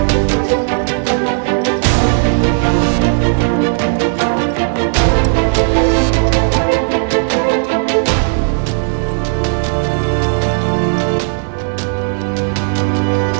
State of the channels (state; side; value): silent; left; digital silence